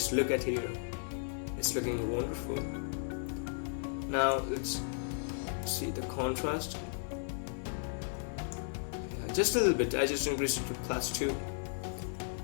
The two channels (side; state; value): right; silent; 54 dB below the other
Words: look at here. It's looking wonderful. Now let's see the contrast. Yeah, just a little bit. I just increased it to +2.